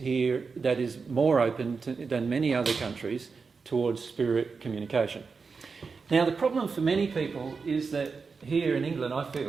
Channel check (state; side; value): quieter; left; 4.9 dB